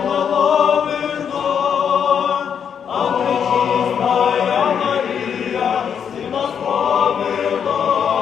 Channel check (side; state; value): right; quieter; 7.7 dB